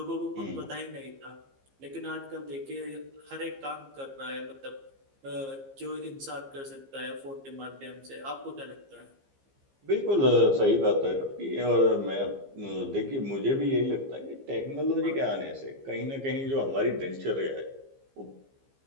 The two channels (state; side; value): late; left; 15 ms